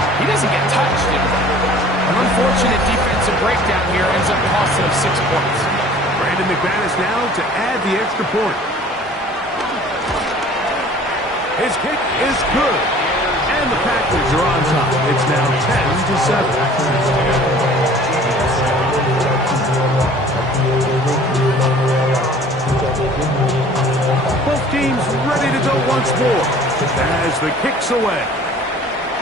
he doesn't get touched. And an unfortunate defensive breakdown here ends up costing him 6 points. Brandon McManus now to add the extra point. His kick is good. And the Packers are on top. It's now 10-7. Both teams ready to go once more as the kick's away.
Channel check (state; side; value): normal; both; correlation 0.49